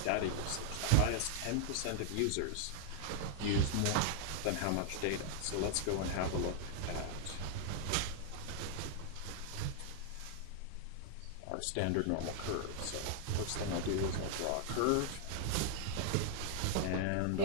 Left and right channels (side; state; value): both; different; correlation 0.00